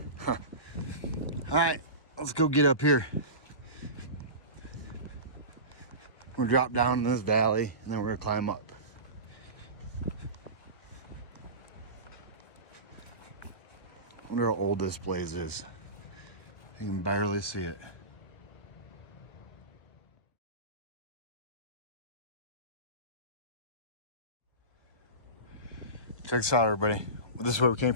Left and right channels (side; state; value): right; late; 1.2 ms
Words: Huh. All right, let's go get up here. We'll drop down in this valley and then we're gonna climb up. I wonder how old this place is. You can barely see it. Check this out, everybody. This is where we came